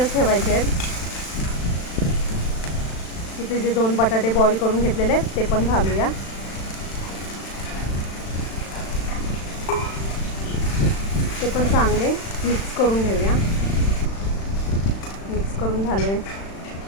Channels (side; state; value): right; late; 36 ms